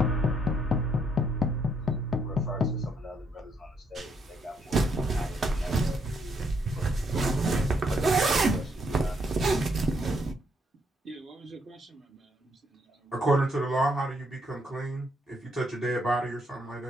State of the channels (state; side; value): normal; both; correlation 0.73